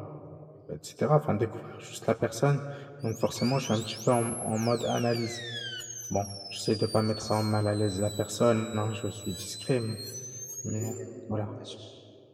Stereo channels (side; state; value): both; identical; correlation 1.00